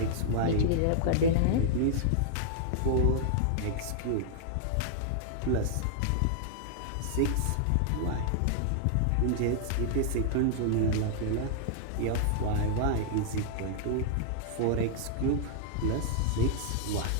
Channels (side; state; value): both; different; correlation -0.01